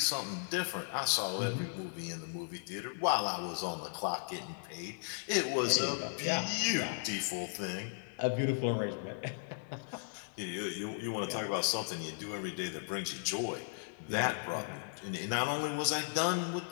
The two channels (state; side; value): silent; right; digital silence